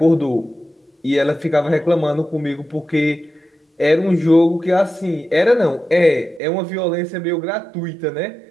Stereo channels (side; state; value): left; drops out; at 6.4 s